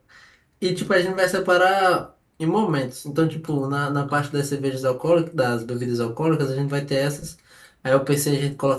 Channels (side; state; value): both; identical; correlation 1.00